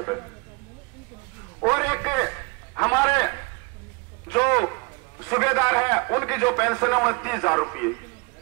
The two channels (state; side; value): quieter; left; 30.3 dB